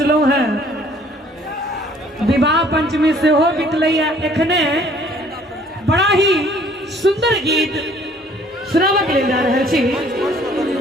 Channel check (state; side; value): normal; both; correlation 0.58